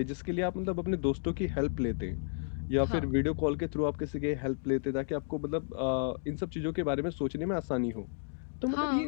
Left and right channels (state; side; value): silent; right; digital silence